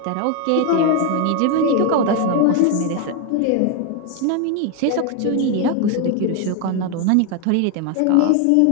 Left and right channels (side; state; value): both; different; correlation 0.01